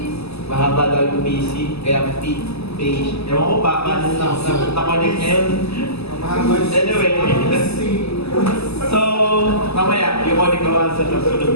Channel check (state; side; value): late; right; 0.79 ms